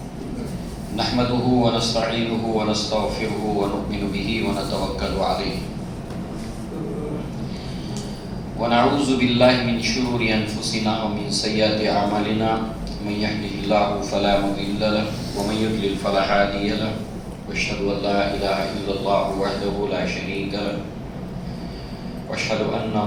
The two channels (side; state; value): both; identical; correlation 1.00